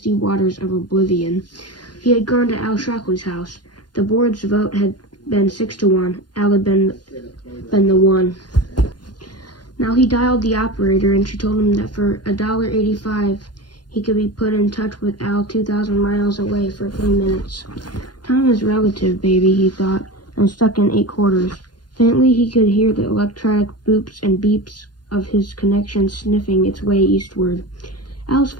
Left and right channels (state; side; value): late; right; 0.70 ms